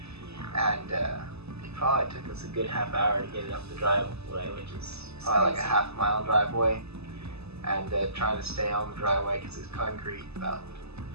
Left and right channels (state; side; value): late; left; 0.79 ms